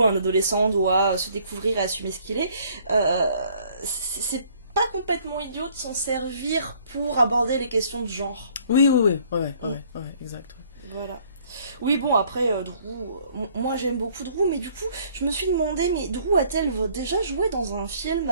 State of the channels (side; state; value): both; inverted; correlation -0.60